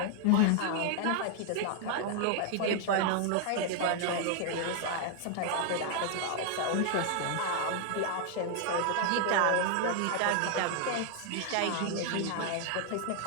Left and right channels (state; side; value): different; both; correlation 0.00